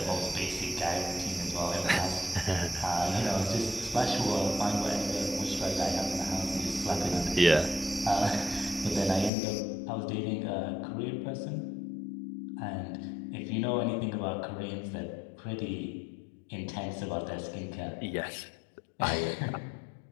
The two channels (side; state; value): right; drops out; at 9.3 s